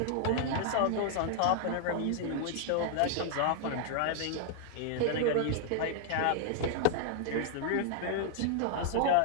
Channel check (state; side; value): different; both; correlation 0.00